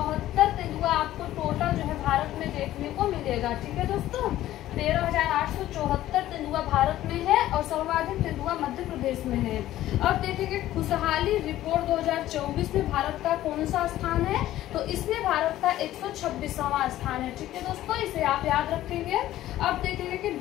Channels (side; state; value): right; quieter; 14.1 dB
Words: तेंदुआ आपको टोटल जो है भारत में देखने को मिलेगा। ठीक है दोस्तों, 13,874 तेंदुआ भारत में है और सर्वाधिक तेंदुआ मध्य प्रदेश में है। अब देखेंगे खुशहाली रिपोर्ट 2024 में भारत का कौन सा स्थान है? तो इसमें भारत का 126वां स्थान है। ठीक है दोस्तों, इसे आप याद रखेंगे। अब देखेंगे कि